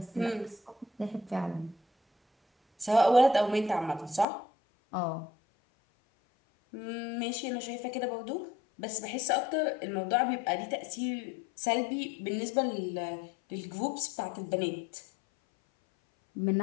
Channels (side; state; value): right; drops out; at 4.2 s